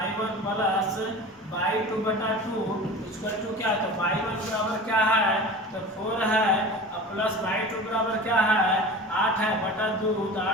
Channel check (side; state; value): both; normal; correlation 0.35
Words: प्लस y2 बटा 2 इक्वल टू क्या, तो y1 बराबर क्या है, तो 4 है, अब प्लस y2 बराबर क्या है, 8 है बटा 2, तो